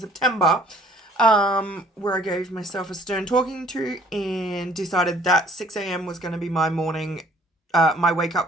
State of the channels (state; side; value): normal; both; correlation 0.56